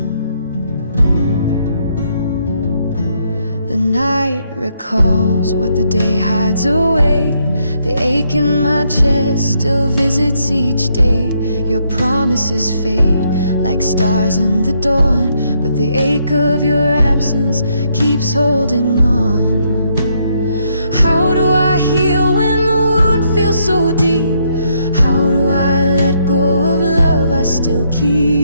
The night recalls what the day hides away. The ache in my chest still visits each day. Your promises fade like stars in the dawn, but the ache of your absence keeps holding on. How do I heal when the wound feels so deep? How do I let go of love I still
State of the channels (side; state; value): both; inverted; correlation -0.74